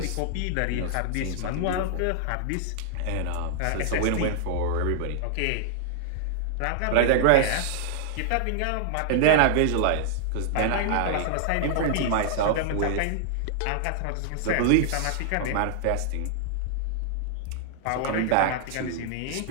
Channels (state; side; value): different; both; correlation -0.01